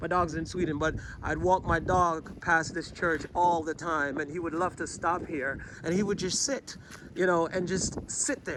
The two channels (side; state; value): both; identical; correlation 1.00